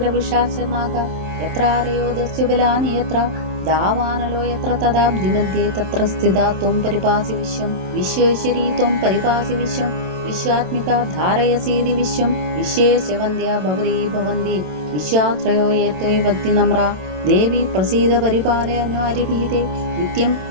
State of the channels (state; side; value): late; left; 27 ms